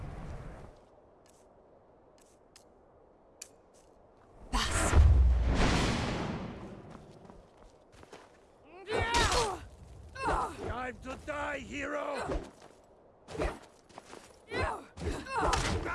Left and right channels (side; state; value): both; identical; correlation 1.00